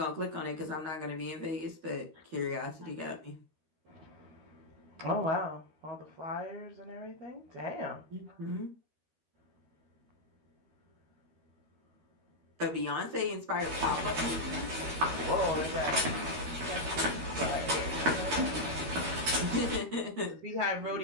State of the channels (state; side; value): late; left; 13 ms